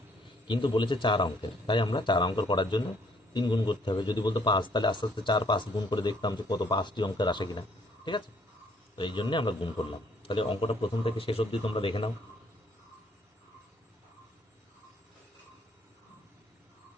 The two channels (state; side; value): normal; both; correlation 0.65